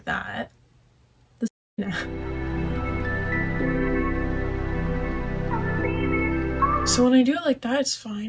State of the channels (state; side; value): identical; both; correlation 1.00